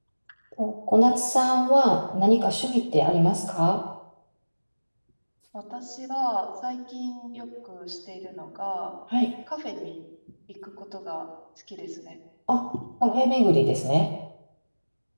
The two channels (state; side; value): inverted; both; correlation -1.00